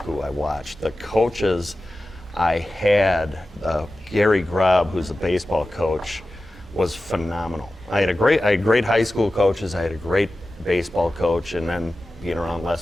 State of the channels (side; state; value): both; normal; correlation 0.94